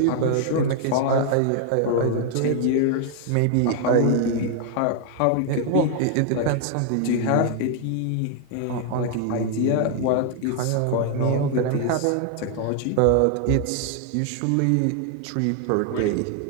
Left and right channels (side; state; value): both; different; correlation 0.00